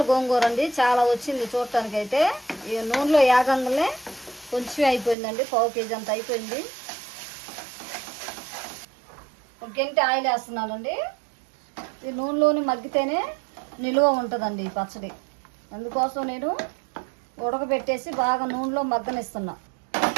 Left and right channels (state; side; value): drops out; left; at 5.2 s